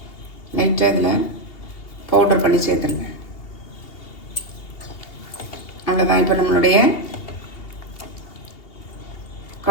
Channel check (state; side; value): late; right; 2.8 ms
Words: லைட்டாக இதில் பவுடர் பண்ணி சேர்த்துருங்க. அவ்வளோதான். இப்போ நம்மளுடைய